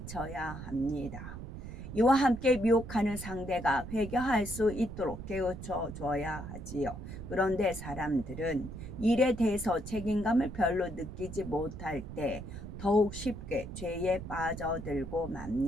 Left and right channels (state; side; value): noise; right; rumble, 10 dB below the sound